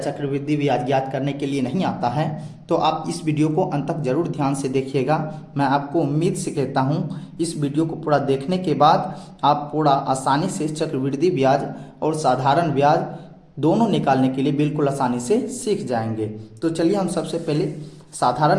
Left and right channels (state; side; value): identical; both; correlation 1.00